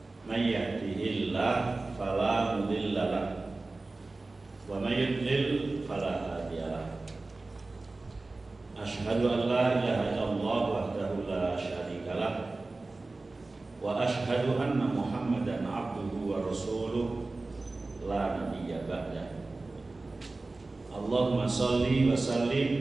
May yahdihillahu fala mudilla lahu wa may yudlil fala hadiya lahu. Asyhadu an la ilaha illallah wahdahu la syarika lah wa asyhadu anna Muhammadan abduhu wa rasuluh la nabiyya ba'dah. Allahumma shalli wa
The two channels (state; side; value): quieter; left; 3.3 dB